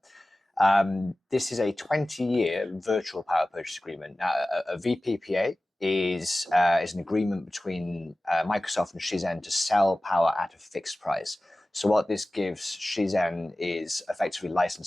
This is a 20-year virtual power purchase agreement. Now, a VPPA is an agreement between Microsoft and Shizen to sell power at a fixed price. So what this gives Shizen is effectively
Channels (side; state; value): both; normal; correlation 0.97